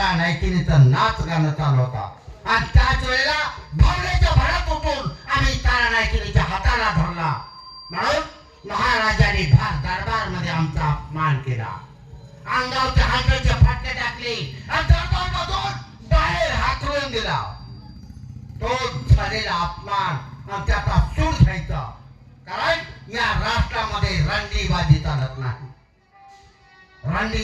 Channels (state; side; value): identical; both; correlation 1.00